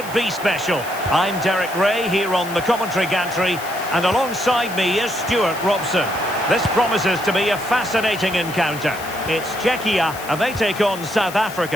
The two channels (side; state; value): left; noise; hiss, 15 dB below the sound